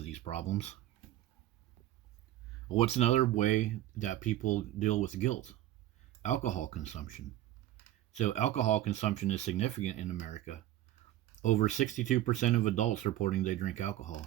these problems. What's another way that people deal with guilt? Alcohol consumption. So, alcohol consumption is significant in America. Over 62% of adults reporting they drink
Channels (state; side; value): quieter; left; 13.8 dB